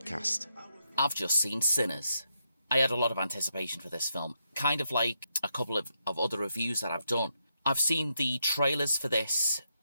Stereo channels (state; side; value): inverted; both; correlation -0.81